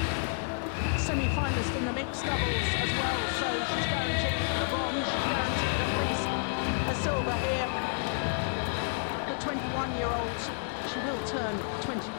semi-finalist in the mixed doubles as well, so she's guaranteed the bronze, she's guaranteed at least a silver here. The 21-year-old, she will turn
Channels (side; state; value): right; silent; digital silence